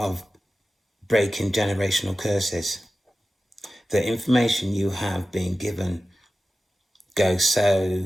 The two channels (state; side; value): normal; both; correlation 0.94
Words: breaking generational curses. The information you have been given go